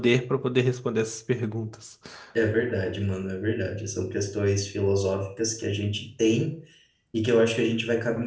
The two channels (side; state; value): both; identical; correlation 1.00